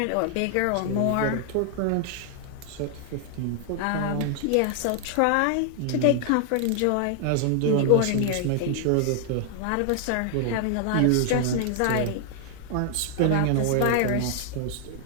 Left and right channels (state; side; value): different; both; correlation 0.00